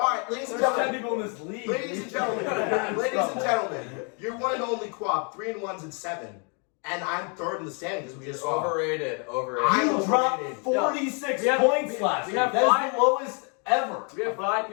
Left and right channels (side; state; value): right; quieter; 37.2 dB